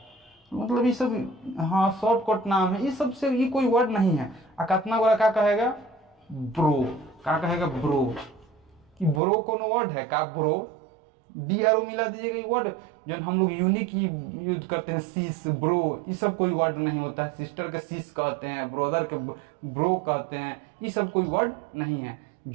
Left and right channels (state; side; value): drops out; left; at 9.2 s